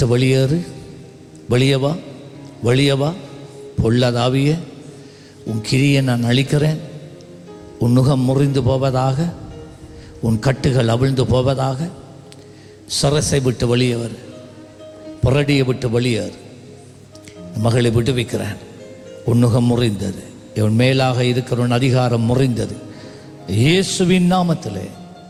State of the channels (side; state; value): both; identical; correlation 1.00